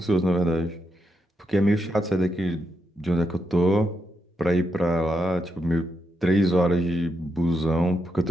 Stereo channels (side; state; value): both; normal; correlation 0.83